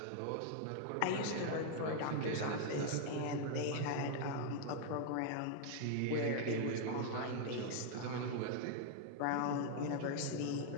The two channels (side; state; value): both; different; correlation 0.00